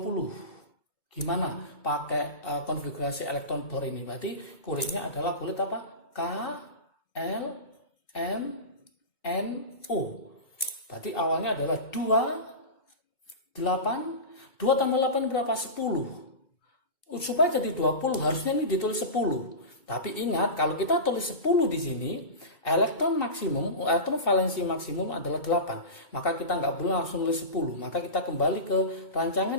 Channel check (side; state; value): right; late; 2.2 ms